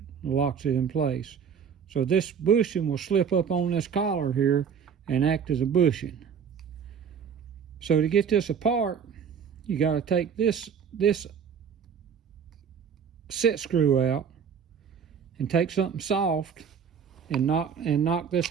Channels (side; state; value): left; quieter; 7.1 dB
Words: and locks it in place. So this bushing will slip up on this collar here and act as a bushing. So to get this apart, you got to take this set screw out and take something soft and knock this